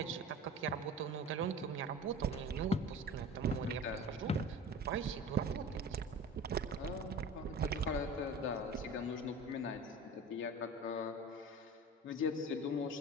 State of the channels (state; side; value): normal; both; correlation 0.37